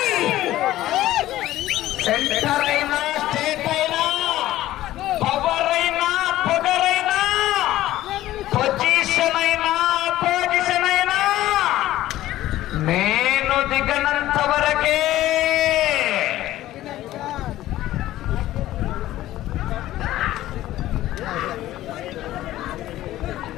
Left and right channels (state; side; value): quieter; right; 14.8 dB